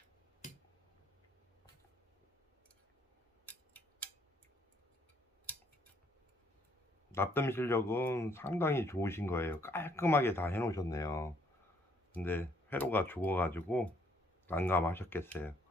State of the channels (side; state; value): both; normal; correlation 0.67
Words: 납땜 실력은 상당히 좋으신 거예요. 깔끔하게 다 해 놓으셨네요. 근데 회로가 죽어 가지고 난감하셨겠어요.